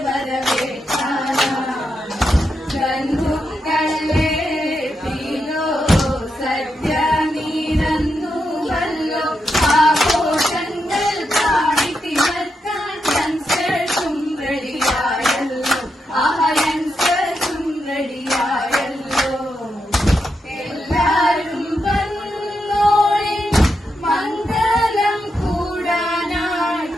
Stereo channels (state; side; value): normal; both; correlation 0.84